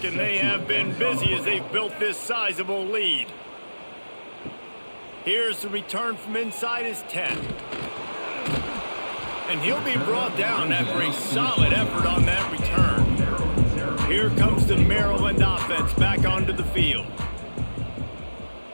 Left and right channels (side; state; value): both; inverted; correlation -1.00